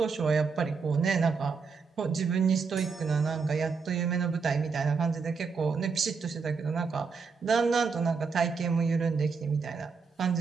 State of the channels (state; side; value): quieter; left; 5.1 dB